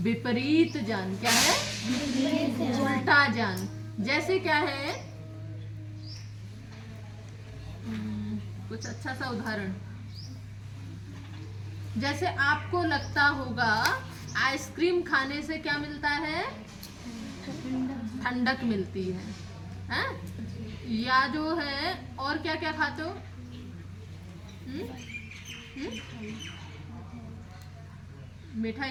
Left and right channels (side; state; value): both; identical; correlation 1.00